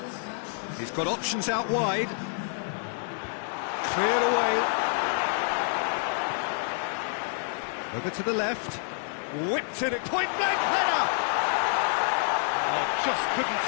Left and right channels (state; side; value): silent; right; 59 dB below the other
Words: He's got options out wide. Cleared away. Over to the left. Whipped in at point-blank header! Oh, just couldn't